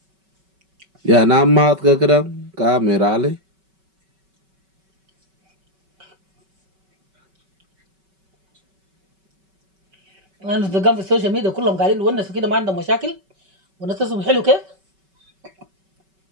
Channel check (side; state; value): left; late; 5.3 ms